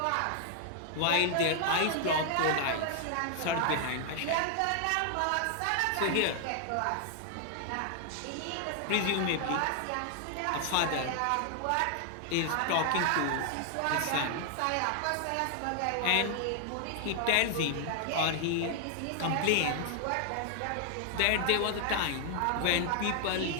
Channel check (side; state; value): both; different; correlation 0.00